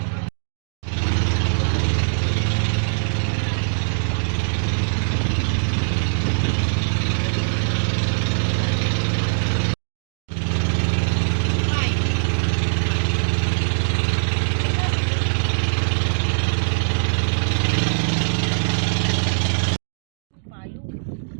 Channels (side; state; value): left; silent; digital silence